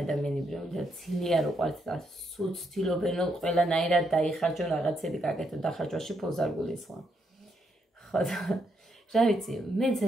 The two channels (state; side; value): normal; both; correlation 0.77